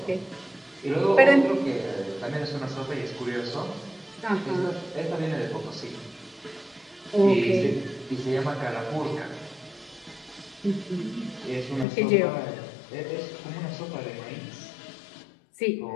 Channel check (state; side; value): drops out; right; at 11.9 s